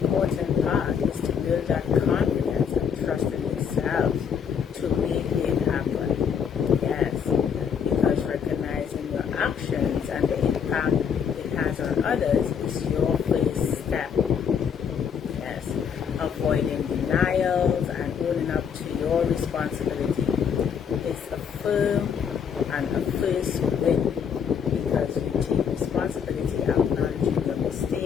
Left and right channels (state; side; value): quieter; right; 7.3 dB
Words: part is to build that confidence and trust in yourself to make it happen. Yes, because recognizing your actions and the impact it has on others is your first step. Yes, avoiding denials and owning up to your responsibility is a firm and a first win because you take responsibility, acknowledging your